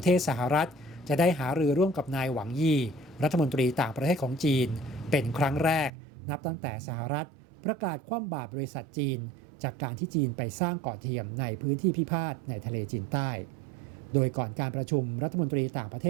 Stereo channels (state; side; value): drops out; left; at 5.9 s